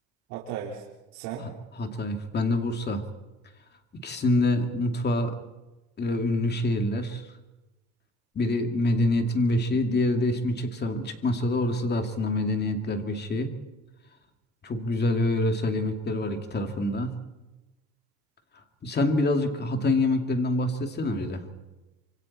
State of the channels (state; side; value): normal; both; correlation 0.57